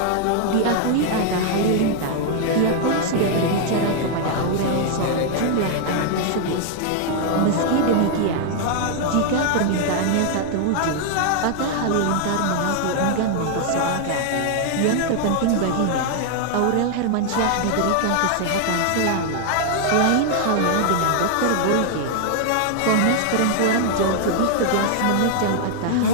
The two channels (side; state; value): both; different; correlation 0.00